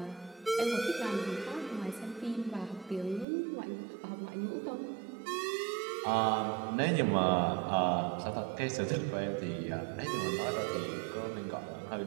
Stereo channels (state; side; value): drops out; left; at 3.2 s